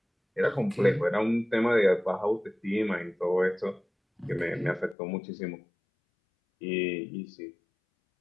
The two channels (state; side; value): drops out; right; at 5.0 s